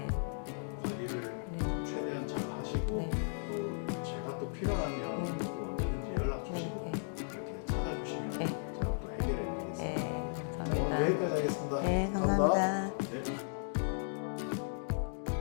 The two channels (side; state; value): right; silent; digital silence